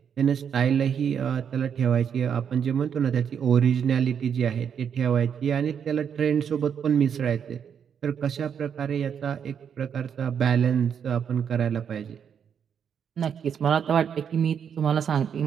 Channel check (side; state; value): left; quieter; 7.7 dB